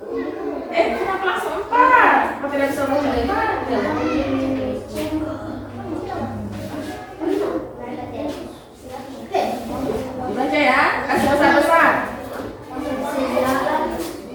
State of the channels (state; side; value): identical; both; correlation 1.00